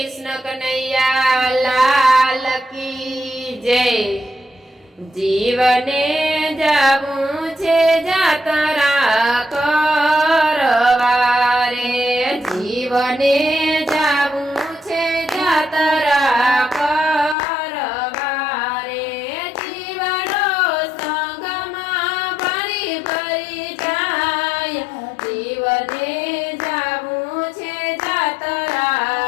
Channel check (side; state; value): right; drops out; at 17.4 s